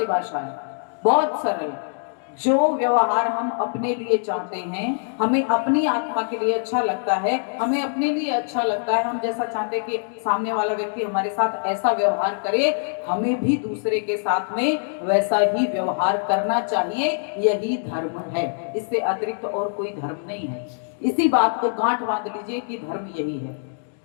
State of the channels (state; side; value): silent; right; digital silence